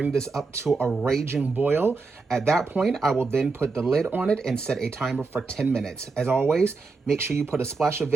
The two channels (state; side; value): quieter; left; 4.1 dB